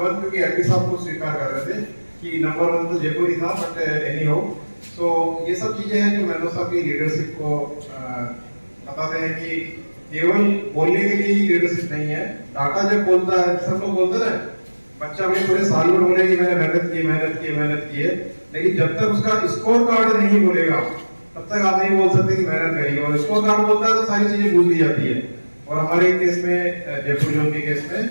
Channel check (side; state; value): both; inverted; correlation -1.00